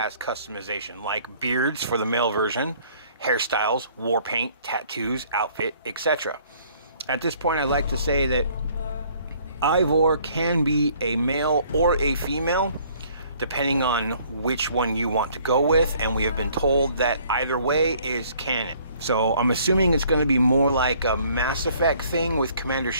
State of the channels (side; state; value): both; inverted; correlation -0.59